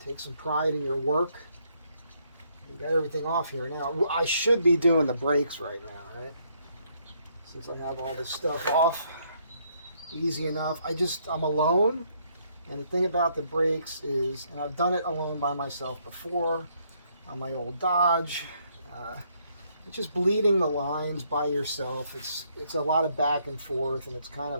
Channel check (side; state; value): both; inverted; correlation -0.71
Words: Take some pride in your work. You got everything off here now. I should be doing the brakes right now, right? Since I have all this stuff off. Easy enough. I'm alone. And the thing about the brakes is, and I've done it alone by myself before on my old Dodge. It's just bleeding the lines by yourself. It's a lot of back and forth, and it's kind